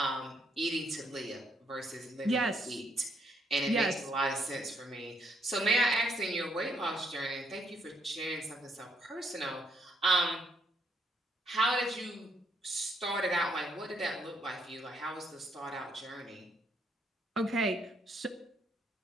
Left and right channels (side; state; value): both; normal; correlation 0.73